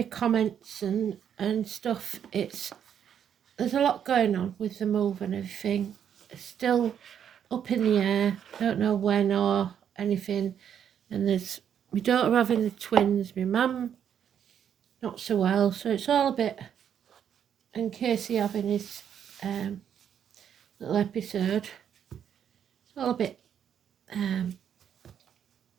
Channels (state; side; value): quieter; left; 8.8 dB